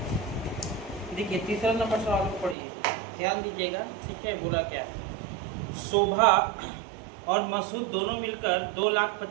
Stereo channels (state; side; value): drops out; left; at 2.6 s